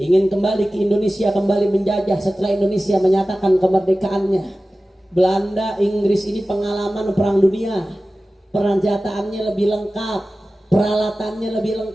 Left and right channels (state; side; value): normal; both; correlation 0.96